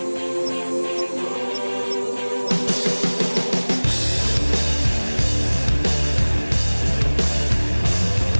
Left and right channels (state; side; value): inverted; both; correlation -1.00